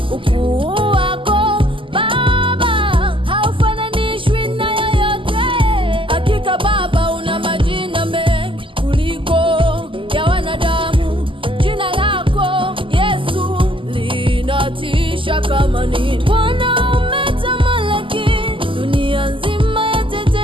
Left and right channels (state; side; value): late; left; 0.25 ms